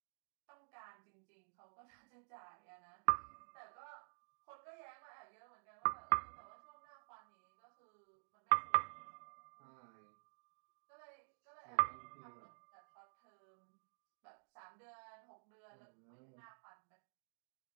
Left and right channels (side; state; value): left; silent; digital silence